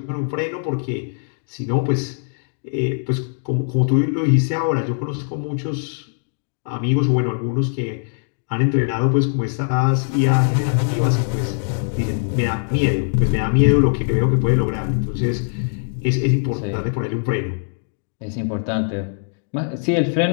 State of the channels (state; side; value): silent; right; digital silence